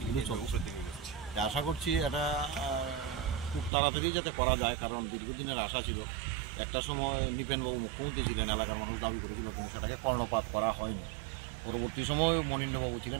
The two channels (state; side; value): drops out; left; at 3.7 s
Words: চলছে। আশা করছি এটা খুব তাড়াতাড়ি যাতে করা যায়, কারণ দীর্ঘদিনের আশা ছিল। একটা সময় নিপেনবাবু মুখ্যমন্ত্রী ছিলেন, এলাকার মানুষ দাবি করেছিল, কিন্তু সেটাকে কর্ণপাত করা হয়নি। পরবর্তী সময় মনীন্দ্রবাবু ছিলেন